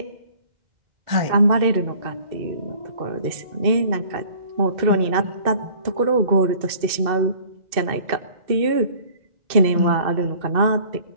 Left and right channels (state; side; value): late; left; 2.6 ms